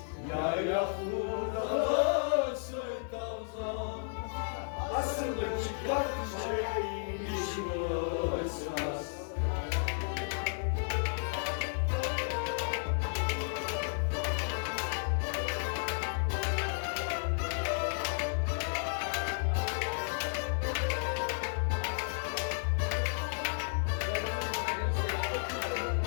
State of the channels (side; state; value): right; silent; 56 dB below the other